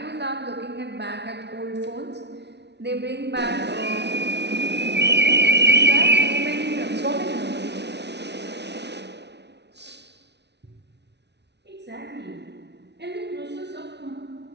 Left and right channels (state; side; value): late; left; 0.50 ms